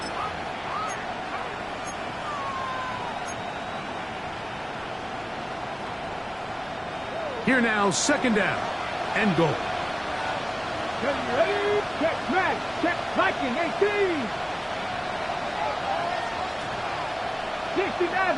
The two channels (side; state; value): both; identical; correlation 1.00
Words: Here now, second down and goal. Ready? Check Matt. Check Viking 18. 60